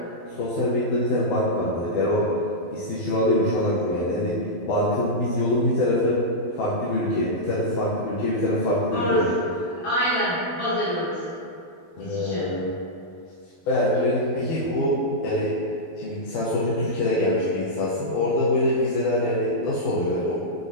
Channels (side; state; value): right; late; 12 ms